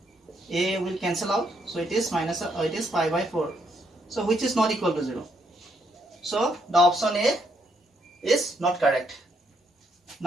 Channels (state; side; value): normal; both; correlation 0.74